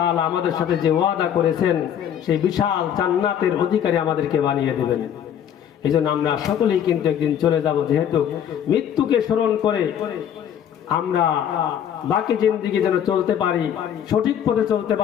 আমাদের সাথে যে ওয়াদা করেছেন সেই বিশাল জান্নাতের অধিকারী আমাদেরকে বানিয়ে দেবেন। এই জন্য আমরা সকলেই কিন্তু একদিন চলে যাব, যেহেতু মৃত্যুকে স্মরণ করে আমরা বাকি জিন্দেগি যেন চলতে পারি, সঠিক পথে চলতে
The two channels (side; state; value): right; quieter; 9.3 dB